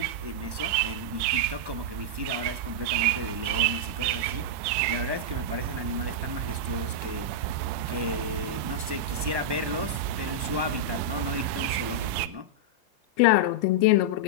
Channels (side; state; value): left; late; 1.1 ms